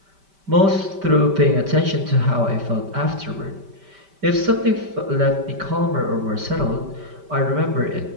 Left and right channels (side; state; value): left; late; 5.1 ms